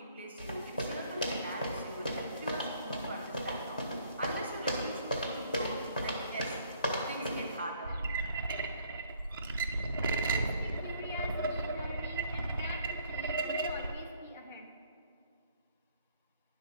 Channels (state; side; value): inverted; both; correlation -0.63